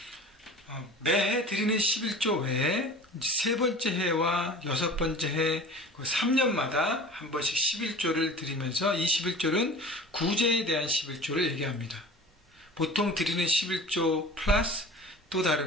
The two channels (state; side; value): normal; both; correlation 0.40